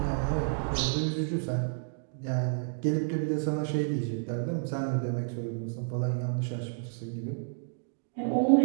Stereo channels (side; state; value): left; silent; digital silence